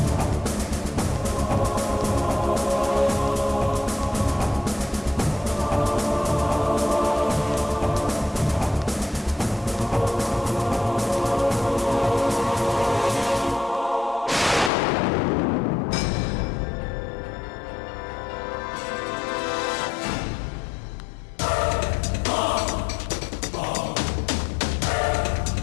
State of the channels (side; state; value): right; drops out; at 14.7 s